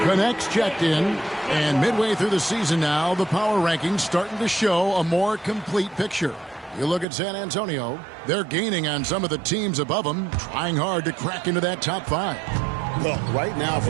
Connects checked in. And midway through the season now, the power rankings starting to show a more complete picture. You look at San Antonio, they're gaining on some of the teams above them, trying hard to crack into that top 5. Well, right now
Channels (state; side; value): drops out; left; at 7.1 s